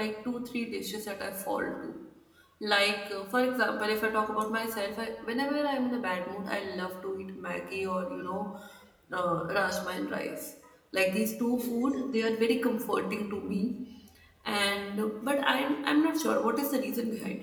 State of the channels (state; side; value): identical; both; correlation 1.00